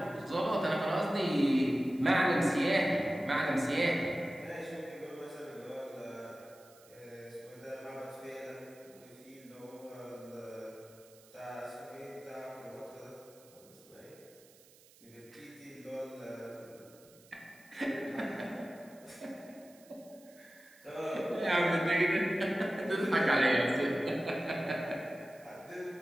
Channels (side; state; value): right; noise; hiss, 25 dB below the sound